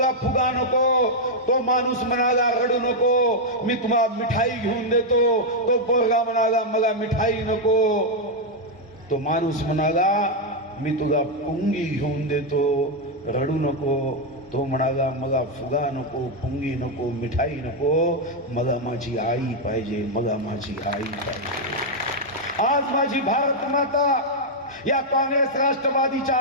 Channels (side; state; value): both; normal; correlation 0.00